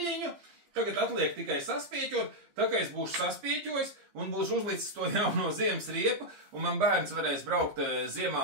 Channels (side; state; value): left; late; 15 ms